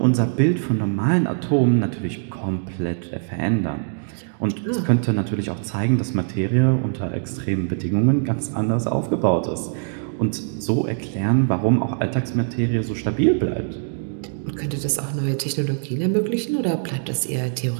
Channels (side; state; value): left; silent; digital silence